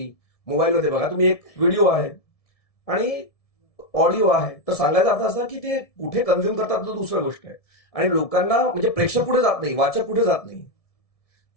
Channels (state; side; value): late; right; 1.7 ms